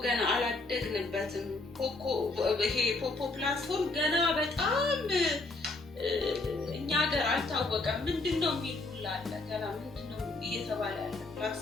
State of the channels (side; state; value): right; quieter; 3.2 dB